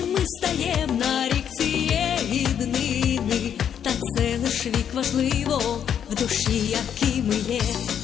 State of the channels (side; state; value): right; quieter; 8.7 dB